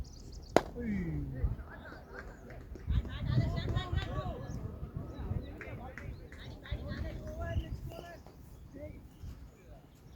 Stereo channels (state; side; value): identical; both; correlation 1.00